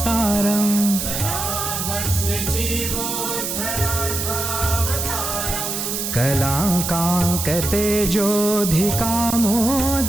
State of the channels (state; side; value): noise; right; hiss, 3 dB below the sound